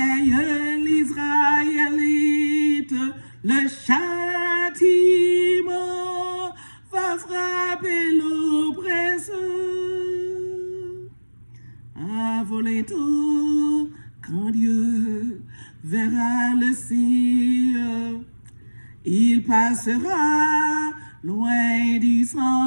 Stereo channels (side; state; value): both; inverted; correlation -1.00